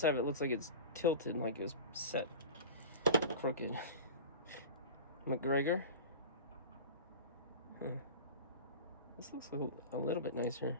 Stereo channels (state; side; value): inverted; both; correlation -0.33